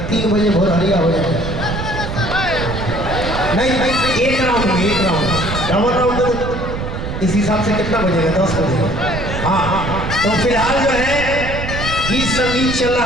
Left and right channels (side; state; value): right; noise; rumble, 5 dB below the sound